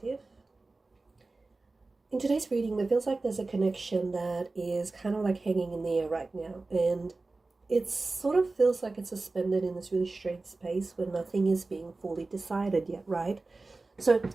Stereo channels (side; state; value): left; quieter; 3.4 dB